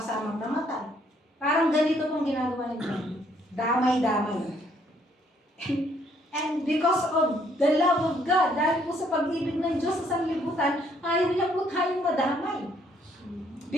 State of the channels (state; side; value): normal; both; correlation 0.67